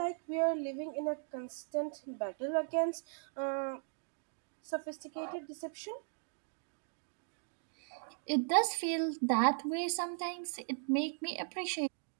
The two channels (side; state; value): left; silent; digital silence